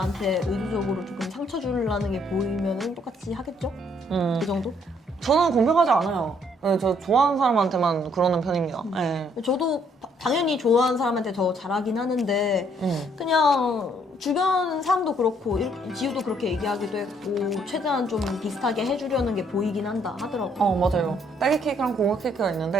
의도적으로 조금 상처 주려는 게 보이면 똑같이 하겠죠? 그 정도? 저는 공평하지 않아요. 네, 저 좋아하는 사람한테만 그러는 편입니다. 네. 저도 당연히 좋아하는 사람한테 더 잘하긴 하는데 그냥 주변 사람도 그렇고 지우도 그렇게 얘기하기도 했고 최대한 좀 비슷하게 해주려는 게 보이긴 한다 하더라고요. 맞아요. 딸기 케이크랑 고구마 케이크가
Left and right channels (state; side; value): normal; both; correlation 0.67